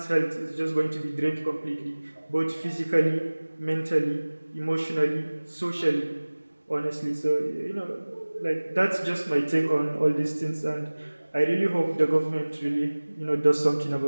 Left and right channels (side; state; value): both; inverted; correlation -1.00